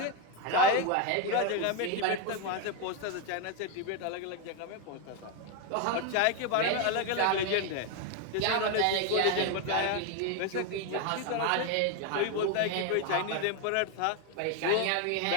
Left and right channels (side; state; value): both; different; correlation 0.02